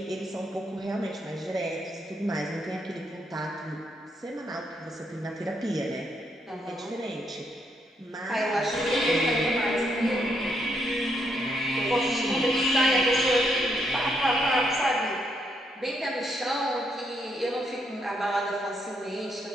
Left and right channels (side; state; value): both; normal; correlation 0.76